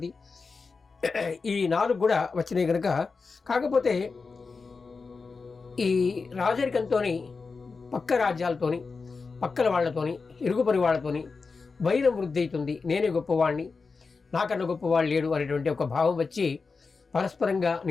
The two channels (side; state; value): right; quieter; 4.5 dB